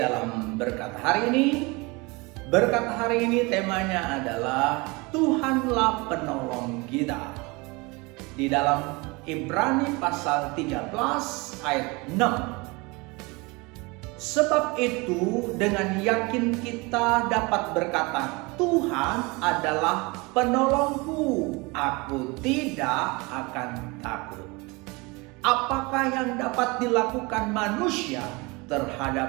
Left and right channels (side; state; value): left; quieter; 26.1 dB